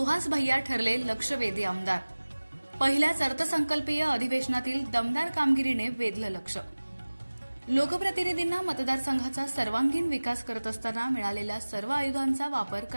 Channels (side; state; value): both; inverted; correlation -1.00